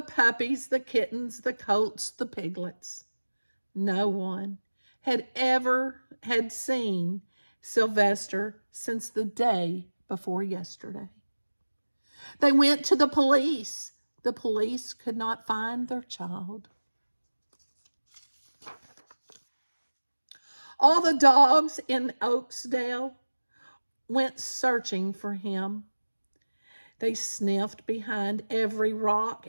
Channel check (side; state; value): both; inverted; correlation -1.00